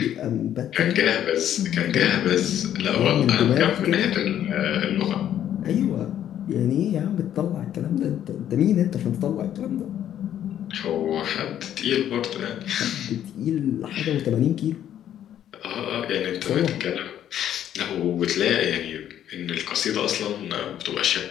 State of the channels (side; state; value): right; quieter; 10.7 dB